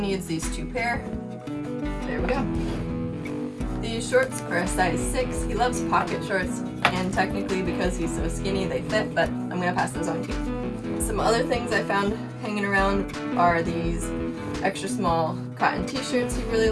these 2 pair. There we go. These shorts are a size 6. He loves pocket shorts, and technically because he's so skinny they fit, but I'm gonna pass those on too. Some other things I found hanging around are these extra small cotton t-shirts he really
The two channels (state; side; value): identical; both; correlation 1.00